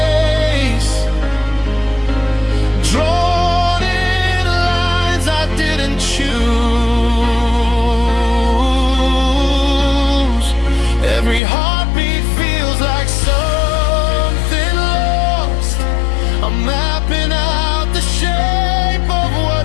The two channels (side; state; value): right; drops out; at 11.4 s